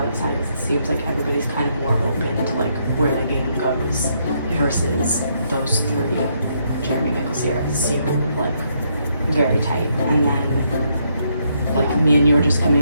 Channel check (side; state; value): both; inverted; correlation -0.74